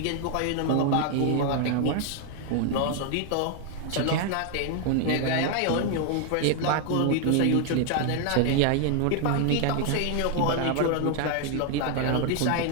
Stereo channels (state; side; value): different; both; correlation 0.00